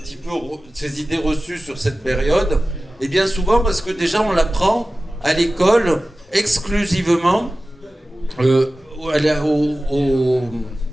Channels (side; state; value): both; normal; correlation 0.96